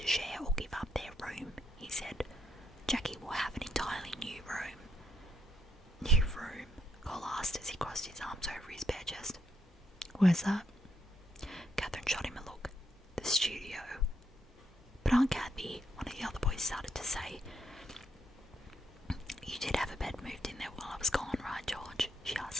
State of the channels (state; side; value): normal; both; correlation 0.77